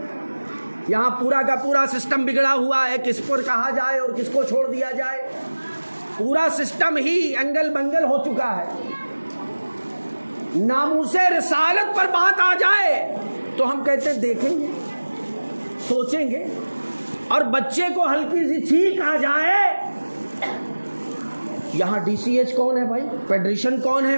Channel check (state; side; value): inverted; both; correlation -1.00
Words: یہاں پورا کا پورا سسٹم بگڑا ہوا ہے، کس پر کہا جائے اور کس کو چھوڑ دیا جائے، پورا سسٹم ہی انگل بنگل ہو چکا ہے۔ ناموس رسالت پر بات آ جائے تو ہم کہتے ہیں دیکھیں گے، سوچیں گے، اور بچے کو ہلکی سی چھینک آ جائے، یہاں ڈی سی ایچ کون ہے بھائی، پیڈریشن کون ہے،